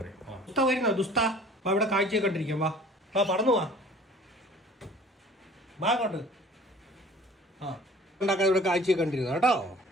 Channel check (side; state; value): both; normal; correlation 0.49